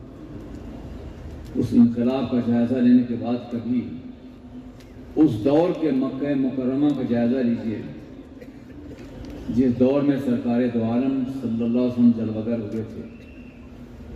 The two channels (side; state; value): both; identical; correlation 1.00